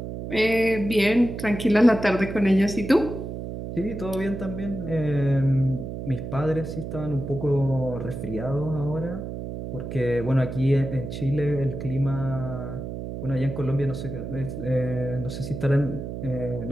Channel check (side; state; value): right; noise; hum, 7 dB below the sound